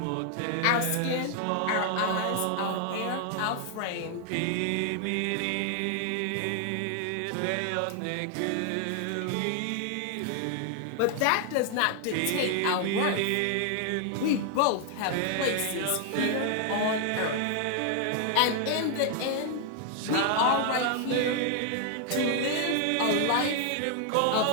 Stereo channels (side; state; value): both; different; correlation 0.00